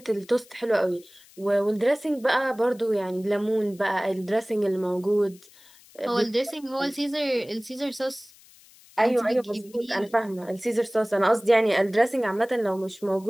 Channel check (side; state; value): left; noise; hiss, 25 dB below the sound